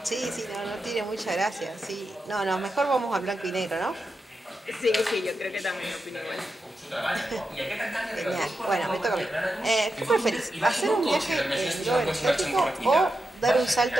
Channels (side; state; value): both; normal; correlation 0.88